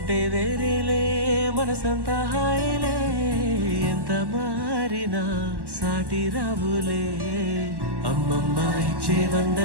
వేరేలే మనసంతా హాయిలే ఎంత మారినా సాటి రావులే అమ్మమ్మ ఇచ్చే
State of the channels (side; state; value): left; late; 1.1 ms